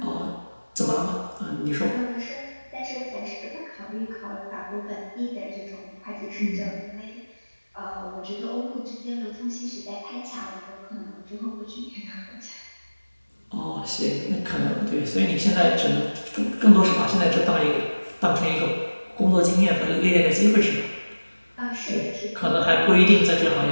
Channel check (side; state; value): both; inverted; correlation -1.00